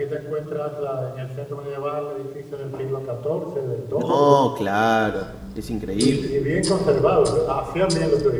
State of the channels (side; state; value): both; identical; correlation 1.00